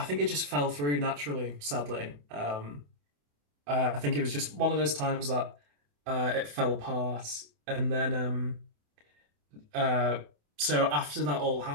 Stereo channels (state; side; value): late; left; 28 ms